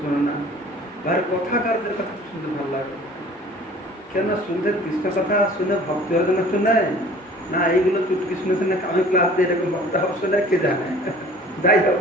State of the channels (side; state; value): both; normal; correlation 0.48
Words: শোনে না, ভাই কথাকারদের কথা শুনতে ভালো লাগে। কেন শুনতে কৃষ্ণ কথা শুনে ভক্তি হওয়ার জন্য শুনে না, এইগুলো চুটকি শুনেছে না, আমি ক্লাস দিয়ে এরকম ভক্ত হওয়া শুনে কে জানে। যাই হোক,